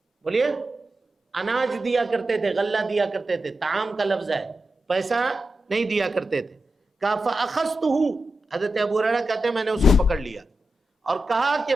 بولیے، اناج دیا کرتے تھے، غلہ دیا کرتے تھے، طعام کا لفظ ہے، پیسہ نہیں دیا کرتے تھے۔ کہا فَأَخَذْتُهُ، حضرت ابو ہریرہ کہتے ہیں میں نے اس کو پکڑ لیا اور کہا کہ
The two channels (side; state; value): both; normal; correlation 0.90